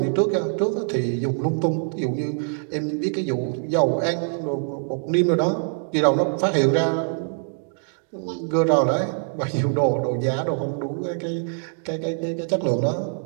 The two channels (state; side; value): silent; left; 63 dB below the other